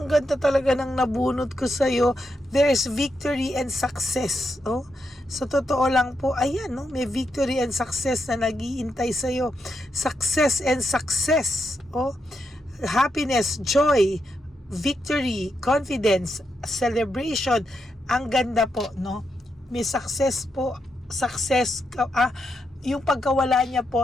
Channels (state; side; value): normal; both; correlation 0.83